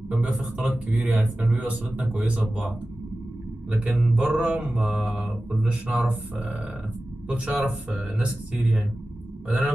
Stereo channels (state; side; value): normal; both; correlation 0.95